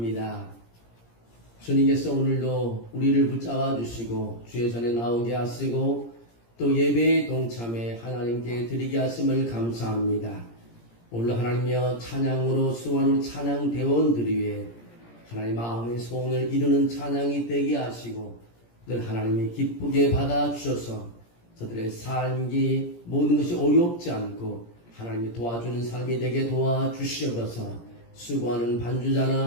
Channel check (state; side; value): late; right; 17 ms